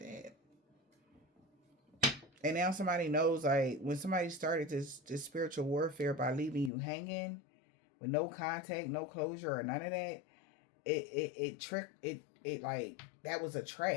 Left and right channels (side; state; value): right; drops out; at 6.7 s